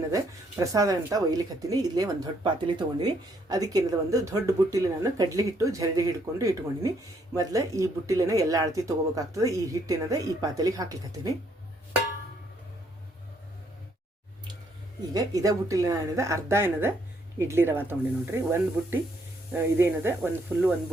ಪ್ರಸಾದ ಅಂತ ಒಯ್ಲಿಕತ್ತೀನಿ. ಇಲ್ಲೇ ಒಂದು ದೊಡ್ಡ ಪಾತ್ರೆಯಲ್ಲಿ ತೊಗೊಂಡಿನಿ. ಅದಕ್ಕೇನದ ಒಂದು ದೊಡ್ಡ ಬುಟ್ಟಿಲಿ ನಾನು ಕಡ್ಲಿ ಹಿಟ್ಟು ಜರಡಿ ಹಿಡ್ಕೊಂಡು ಇಟ್ಕೊಂಡಿನಿ. ಮೊದಲು ಈ ಬುಟ್ಟಿಲೇನ ಎಲ್ಲ ಅಳತಿ ತೊಗೋಬೇಕಾಗ್ತದೆ. ಈ ಹಿಟ್ಟೇನದ ಈ ಪಾತ್ರೆಲಿಗೆ ಹಾಕ್ಲಿಕತ್ತೀನಿ. ಈಗ ಇದೇ ಬುಟ್ಟಿಲಿ ಏನದ ಅರ್ಧ ಏನದ ಇಡ್ಲಿ ರವೆ ತೊಗೊಂಡಿ ನೋಡ್ರಿ. ಒಂದು ಬುಟ್ಟಿ ಇದೇನದ ಒಂದು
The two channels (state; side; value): normal; both; correlation 0.70